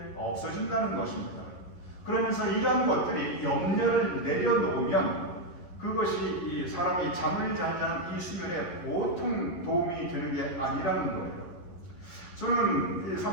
없어진다는 것입니다. 그러면서 이러한 것들이 염려를 내려놓으면 그것이 이 사람이 잠을 잘 자는 이 수면에 보통 도움이 되는 게 아니라는 거예요. 저는 이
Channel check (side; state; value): right; late; 11 ms